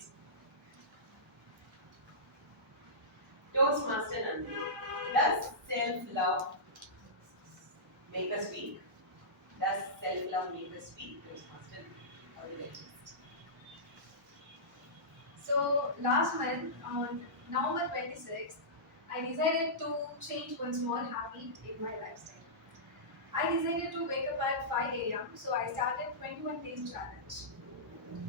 Toastmaster Nandhini, does self-love make us weak? Does self-love make us weak, Toastmaster? Evaluators. So last month on November 26th, I decided to change one small habit in my lifestyle. I decided to wake up at 5 a.m. So I started 21 days challenge.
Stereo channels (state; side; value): normal; both; correlation -0.17